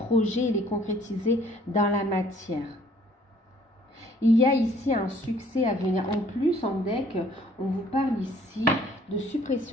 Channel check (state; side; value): normal; both; correlation 0.59